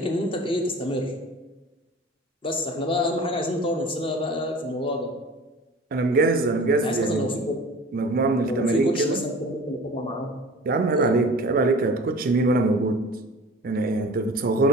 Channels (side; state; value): both; normal; correlation 0.42